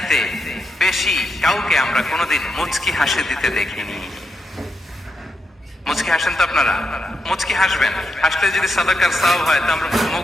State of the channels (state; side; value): normal; both; correlation 0.83